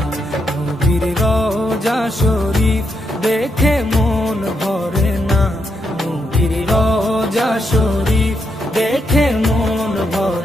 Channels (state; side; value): normal; both; correlation 0.81